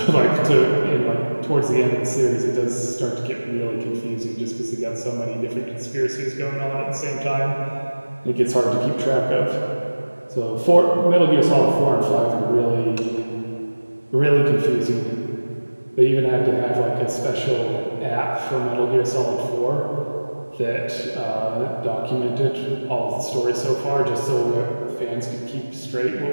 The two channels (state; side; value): inverted; both; correlation -1.00